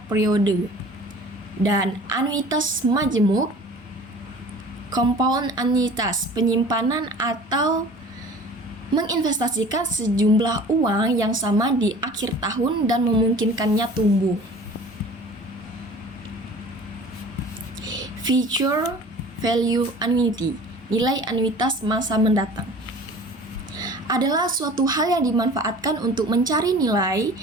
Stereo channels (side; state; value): both; normal; correlation 0.45